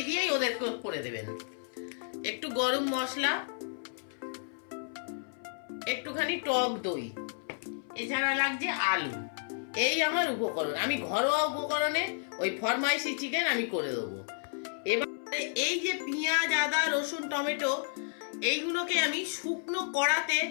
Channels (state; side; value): silent; right; 57 dB below the other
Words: দিয়েই ওদেরকে করে দেবেন। একটু গরম মশলা, একটুখানি টক দই, এছাড়া লাগছে আলু। এই আমার উপকরণ। আমি ঘরোয়া উপকরণে ওই ফরমাইশি চিকেন আমি করে দেবো। এবারে এই যে পেঁয়াজ, আদা, রসুন, টমেটো, এইগুলোকে আমি শুকনো কড়াতে